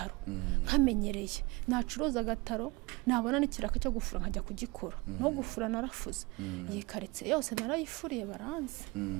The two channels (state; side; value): quieter; left; 24.6 dB